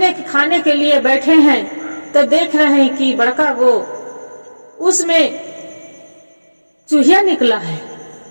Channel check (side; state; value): both; inverted; correlation -1.00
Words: खाने के लिए बैठे हैं, तो देख रहे हैं कि बड़का वो उसमें चूहिया निकला है।